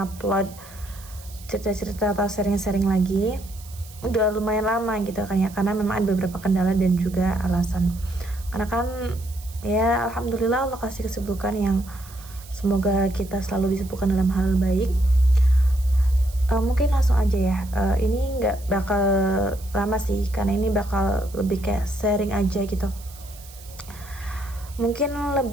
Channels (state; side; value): noise; right; hiss, 20 dB below the sound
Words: cerita-cerita atau sharing-sharing lagi. Udah lumayan lama gitu kan ya, karena memang ada beberapa kendala dan juga alasan. Karena kan ya alhamdulillah Allah kasih kesibukan yang semoga kita selalu disibukkan dalam hal baik. Mungkin langsung aja ya. Ini nggak bakal lama sih, karena ini bakal lebih kayak sharing aja gitu. Mungkin